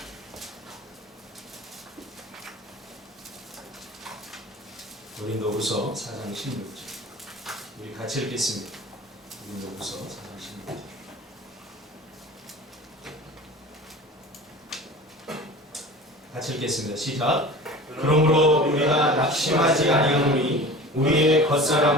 고린도후서 4장 16절. 우리 같이 읽겠습니다. 고린도후서 4장 16절. 같이 읽겠습니다. 시작. 그러므로 우리가 낙심하지 아니하노니 우리의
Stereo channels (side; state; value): both; normal; correlation 0.38